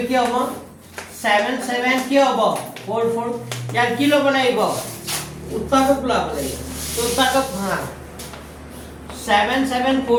কি হ'ব 77 কি হ'ব 44 ইয়াক কি ল'ব লাগিব উৎপাদক ল'ব লাগিব তো উৎপাদক ভাঙা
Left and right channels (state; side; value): identical; both; correlation 1.00